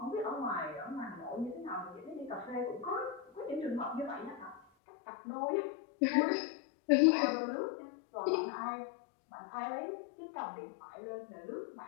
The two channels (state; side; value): drops out; right; at 4.6 s